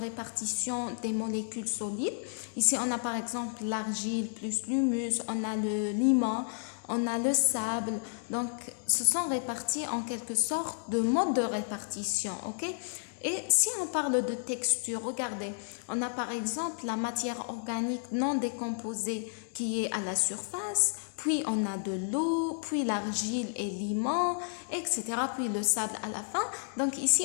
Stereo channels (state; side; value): silent; right; digital silence